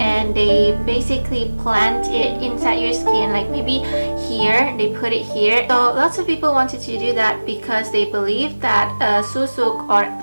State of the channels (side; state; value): both; inverted; correlation -1.00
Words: they basically plant it inside your skin, like maybe here, they put it here. So lots of people wanted to do that because they believe that Susuk, or